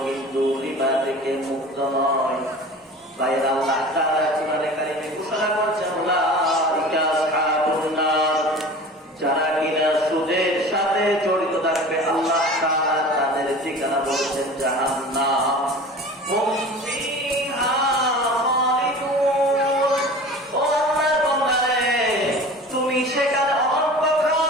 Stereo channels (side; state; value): both; normal; correlation 0.39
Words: কিন্তু রিবা থেকে মুক্ত নয়। বাইরে আল্লাহ তাআলা কোরআনে কারিমে ঘোষণা করেছেন, উলাইকা আসহাবুন নার, যারা কিনা সুদের সাথে জড়িত থাকবে আল্লাহ তাআলা তাদের ঠিকানা বলেছেন জাহান্নাম। হুম ফিহা খালিদুন। ও আল্লাহর বান্দারে, তুমি সেখানে